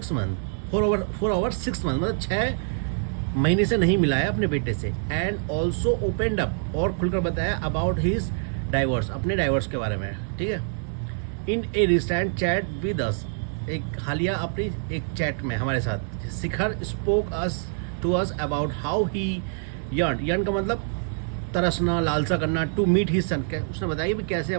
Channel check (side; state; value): left; silent; digital silence